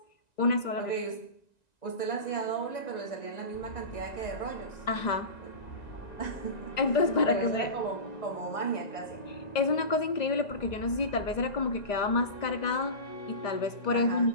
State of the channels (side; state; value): right; late; 1.9 ms